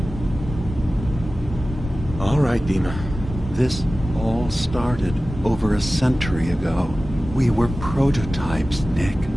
All right, Dima. This all started over a century ago. We were prototypes, Nick.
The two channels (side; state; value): both; normal; correlation 0.96